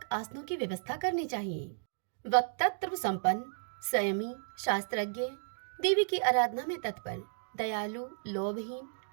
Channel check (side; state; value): left; silent; digital silence